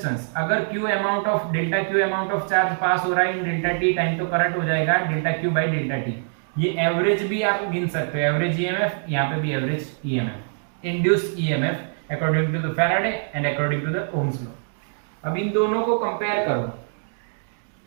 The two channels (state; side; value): silent; left; digital silence